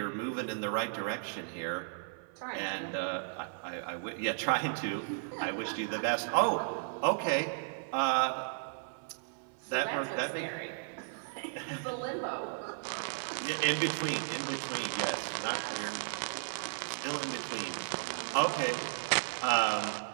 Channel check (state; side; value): silent; left; 55 dB below the other